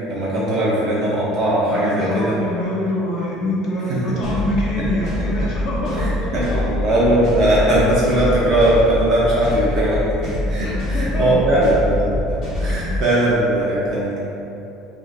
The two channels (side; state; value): both; normal; correlation 0.54